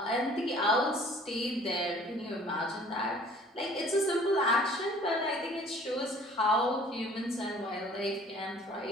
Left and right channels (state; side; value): normal; both; correlation 0.52